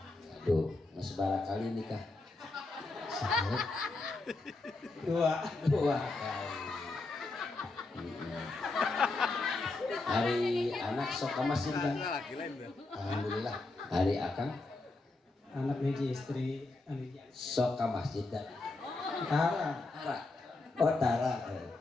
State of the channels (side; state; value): right; quieter; 3.3 dB